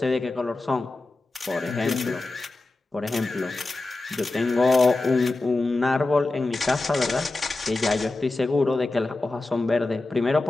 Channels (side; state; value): right; quieter; 3.1 dB